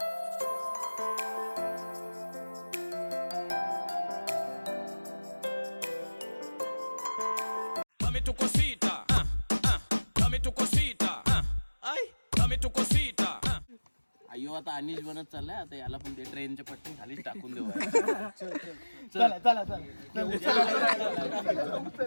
Dame tu cosita, dame tu cosita, ay, अय्यो आता अनिश बनत चाललाय आता याला पण ते ट्रेनच्या पट्टी खालीच टाकून देऊ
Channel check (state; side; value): inverted; both; correlation -1.00